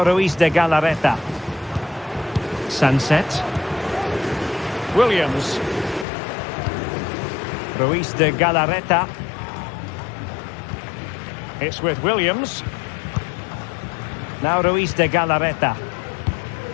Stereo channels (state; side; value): drops out; right; at 6.1 s